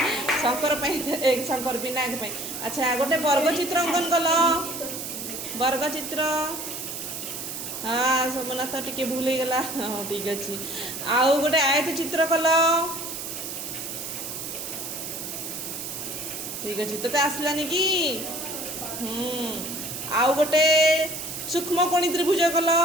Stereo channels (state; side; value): noise; right; hiss, 7 dB below the sound